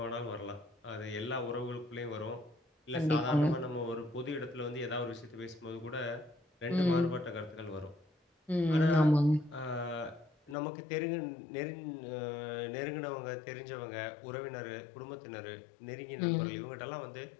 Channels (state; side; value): drops out; right; at 10.6 s